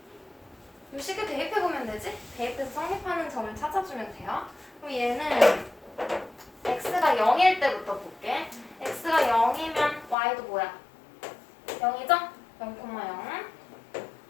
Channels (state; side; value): drops out; right; at 10.2 s